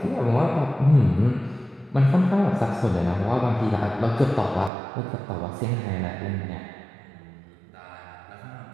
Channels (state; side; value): drops out; left; at 4.7 s